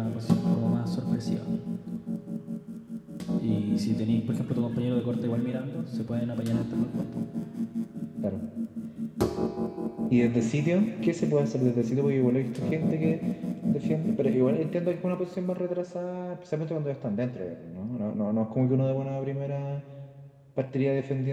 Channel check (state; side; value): identical; both; correlation 1.00